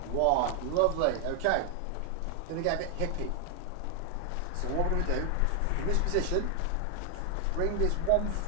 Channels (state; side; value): different; both; correlation 0.00